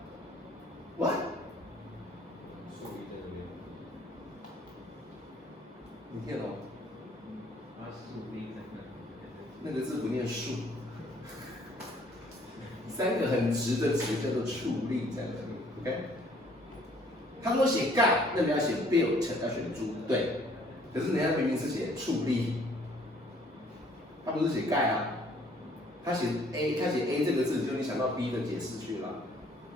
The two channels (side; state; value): both; normal; correlation 0.60